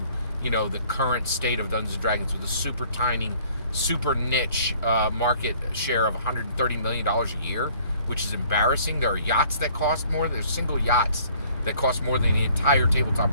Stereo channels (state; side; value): inverted; both; correlation -0.57